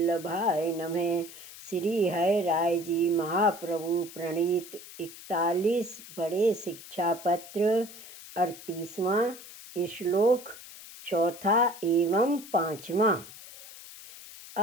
नमः। श्री हरि राय जी महाप्रभु प्रणीत 41 बड़े शिक्षा पत्र 38वां श्लोक चौथा एवं पांचवा।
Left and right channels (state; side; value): noise; left; hiss, 16 dB below the sound